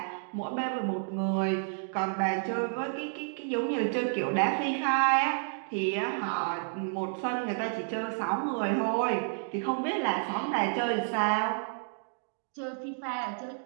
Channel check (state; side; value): silent; left; digital silence